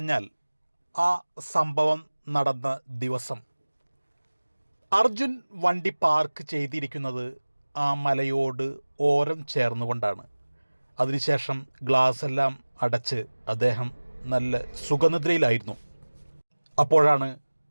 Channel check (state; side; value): inverted; both; correlation -1.00